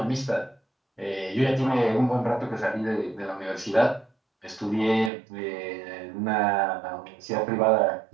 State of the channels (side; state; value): left; drops out; at 5.1 s